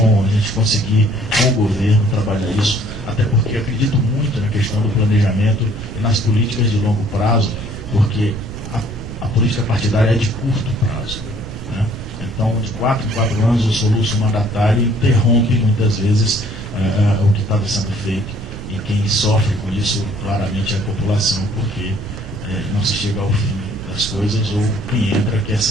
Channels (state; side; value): noise; right; rumble, 10 dB below the sound